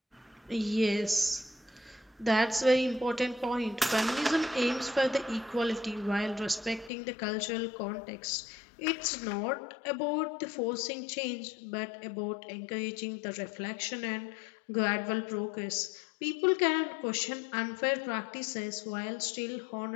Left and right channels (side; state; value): right; drops out; at 6.9 s